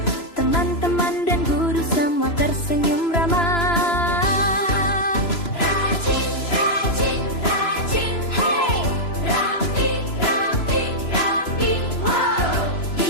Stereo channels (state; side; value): late; right; 3.0 ms